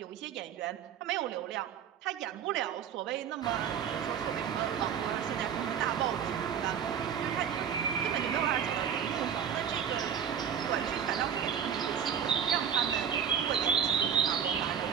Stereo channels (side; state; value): left; quieter; 8.2 dB